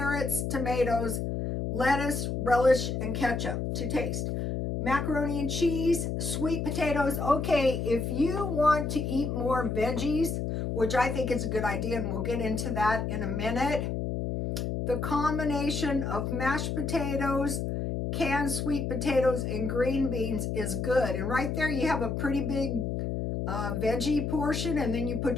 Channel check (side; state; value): left; noise; hum, 2 dB below the sound